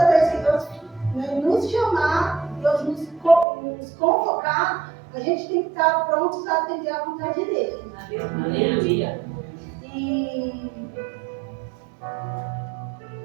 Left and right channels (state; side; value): drops out; left; at 3.5 s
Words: vez que Deus, né, nos chamar, Deus nos convocar, a gente tem que estar prontos a atender a vontade dele. Aleluia. E